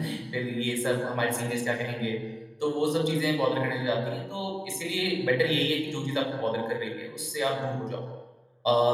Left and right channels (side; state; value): both; identical; correlation 1.00